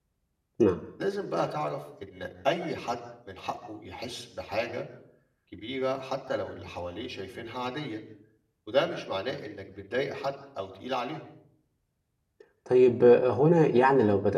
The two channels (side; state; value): both; identical; correlation 1.00